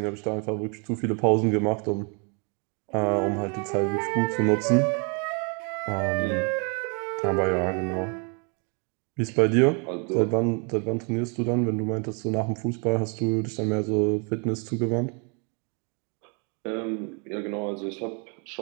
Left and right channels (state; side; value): quieter; left; 36.0 dB